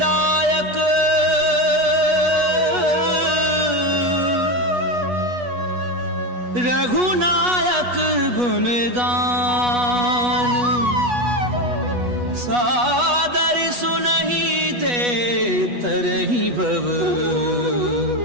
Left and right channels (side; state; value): left; late; 8.2 ms